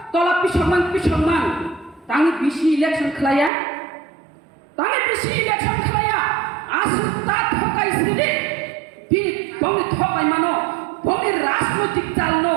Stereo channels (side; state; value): left; drops out; at 3.5 s